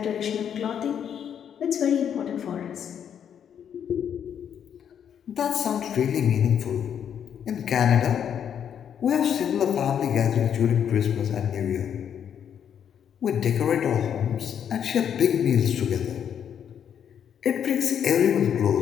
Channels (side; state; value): right; quieter; 8.6 dB